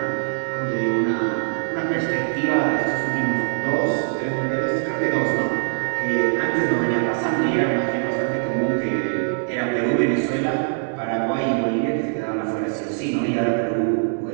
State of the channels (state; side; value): silent; left; 60 dB below the other